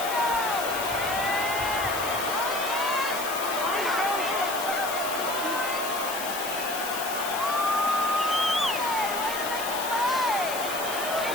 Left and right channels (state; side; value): noise; left; hiss, 8 dB below the sound